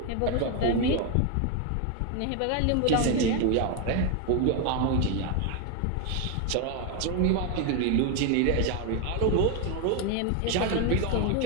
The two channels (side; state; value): both; different; correlation 0.01